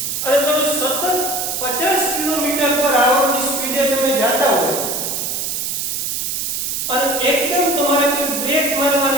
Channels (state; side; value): noise; right; hiss, 2 dB below the sound